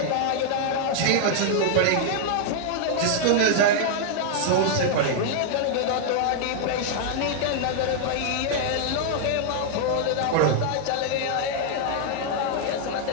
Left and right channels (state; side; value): different; both; correlation 0.00